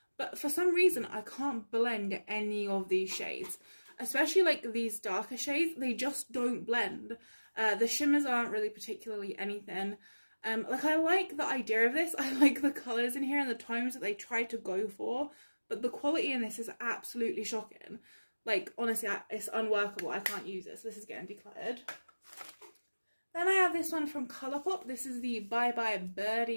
But for some reason, I can't blend any of these shades. Especially like these darker shades, they just don't blend. The shimmers aren't really particularly anything. Like I like the idea of this. I like the colours in here and the tones that they tried to go for. But the quality in this is absolutely shocking. Like, honestly, it's unworkable. I can't use this. This is getting decluttered. Then I have this one from Colourpop. This is the Bye Bye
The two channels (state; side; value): inverted; both; correlation -1.00